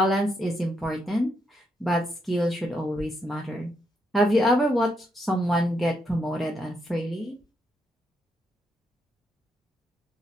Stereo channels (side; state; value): both; normal; correlation 0.79